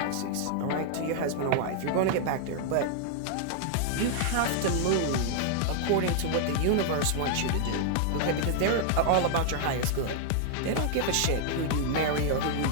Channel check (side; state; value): both; different; correlation 0.00